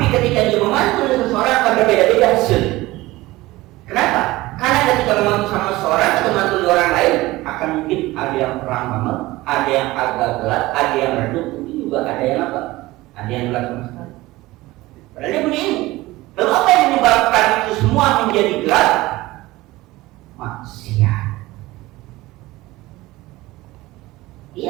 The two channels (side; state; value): left; quieter; 18.9 dB